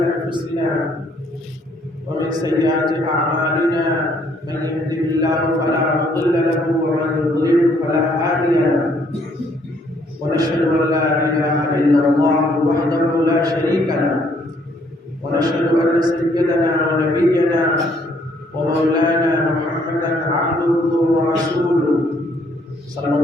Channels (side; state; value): both; normal; correlation 0.66